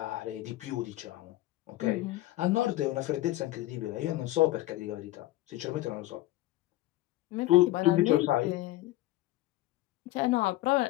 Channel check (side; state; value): right; quieter; 16.8 dB